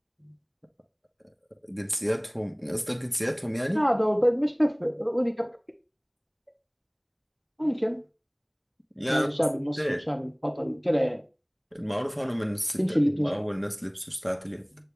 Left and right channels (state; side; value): identical; both; correlation 1.00